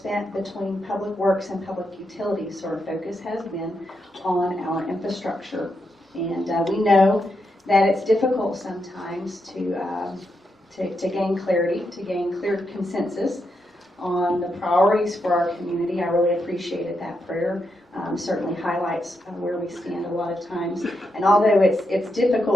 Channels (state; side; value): normal; both; correlation 0.83